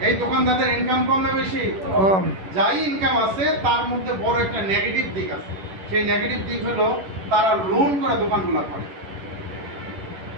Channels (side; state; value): left; late; 11 ms